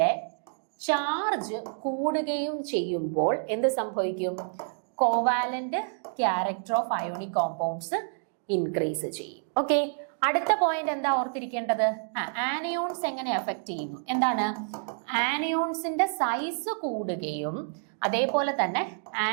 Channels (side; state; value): left; silent; digital silence